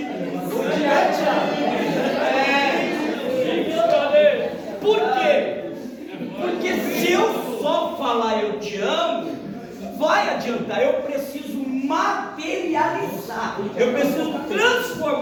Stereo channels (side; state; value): both; identical; correlation 1.00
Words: Por quê? Porque se eu só falar eu te amo, vai adiantar. Eu preciso materializar. Eu preciso